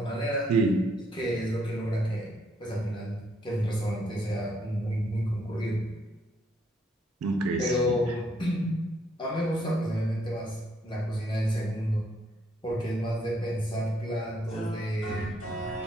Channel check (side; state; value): both; normal; correlation 0.71